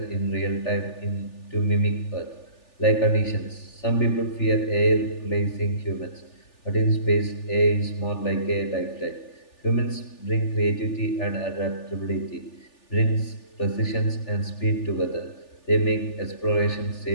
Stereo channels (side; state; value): right; late; 3.4 ms